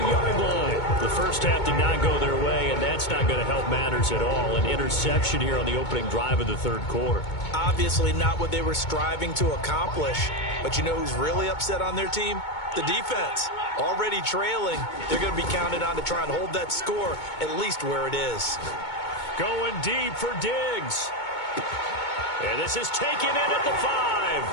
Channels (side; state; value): right; late; 2.2 ms